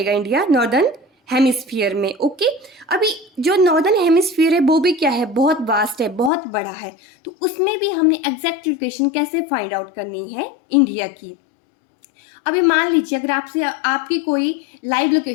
इंडिया? नॉर्दर्न हेमिस्फीयर में। ओके, अभी जो नॉर्दर्न हेमिस्फीयर है वो भी क्या है? बहुत वास्ट है, बहुत बड़ा है। तो उसमें भी हमने एग्जैक्ट लोकेशन कैसे फाइंड आउट करनी है इंडिया की। अभी मान लीजिए अगर आपसे आपकी कोई लाइव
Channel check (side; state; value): right; drops out; at 6.3 s